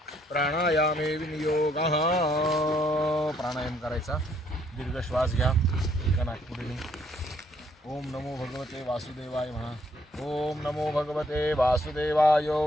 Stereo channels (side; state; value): both; normal; correlation 0.68